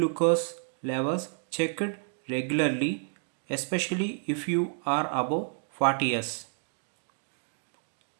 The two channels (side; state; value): left; silent; 58 dB below the other